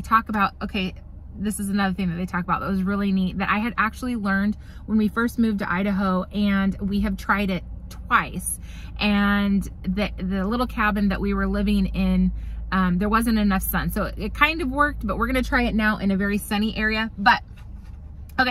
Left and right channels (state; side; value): identical; both; correlation 1.00